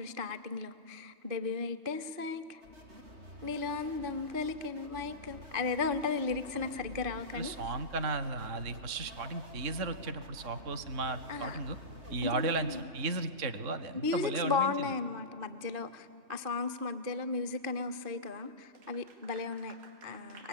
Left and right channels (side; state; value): left; late; 3.6 ms